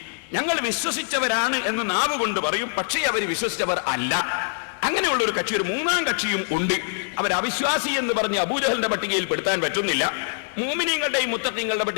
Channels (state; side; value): silent; right; digital silence